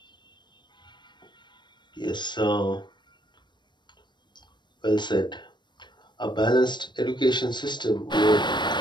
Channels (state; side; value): late; right; 0.22 ms